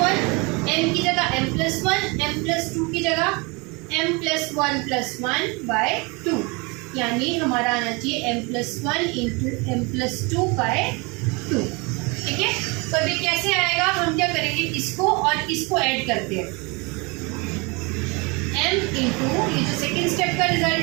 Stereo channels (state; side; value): quieter; left; 28.3 dB